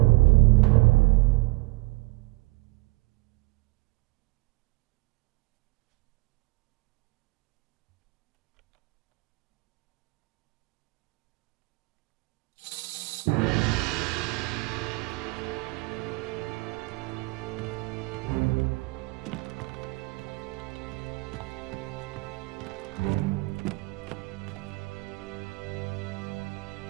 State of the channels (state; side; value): quieter; left; 24.4 dB